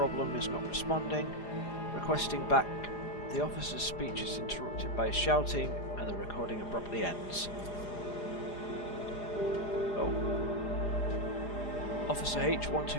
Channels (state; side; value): late; right; 4.9 ms